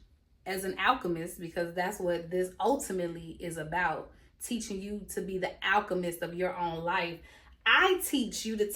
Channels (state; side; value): identical; both; correlation 1.00